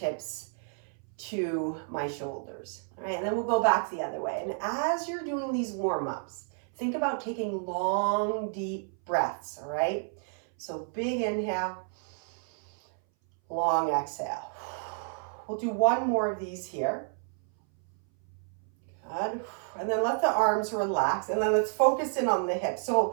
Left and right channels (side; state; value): left; silent; 58 dB below the other